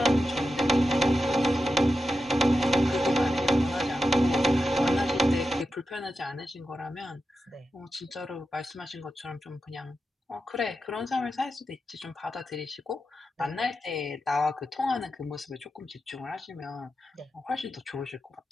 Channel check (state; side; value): normal; both; correlation 0.90